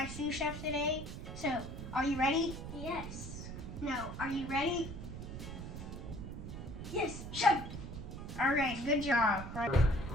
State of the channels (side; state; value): right; noise; rumble, 8 dB below the sound